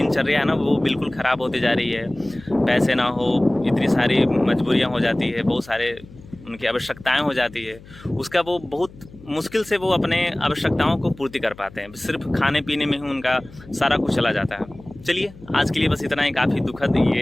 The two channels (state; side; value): noise; left; hum, 21 dB below the sound